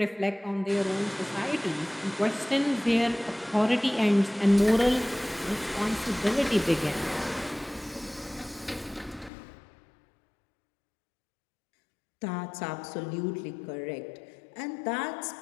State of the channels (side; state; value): right; drops out; at 9.3 s